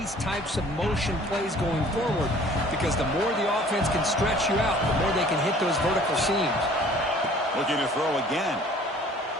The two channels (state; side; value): normal; both; correlation 0.52